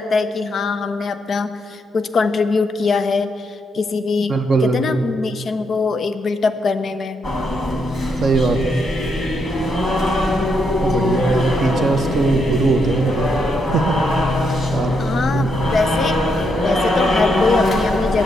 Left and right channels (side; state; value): both; normal; correlation 0.78